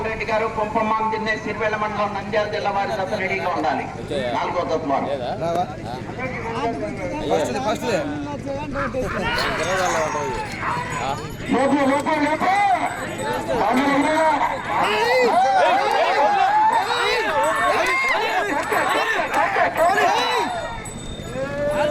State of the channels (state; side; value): identical; both; correlation 1.00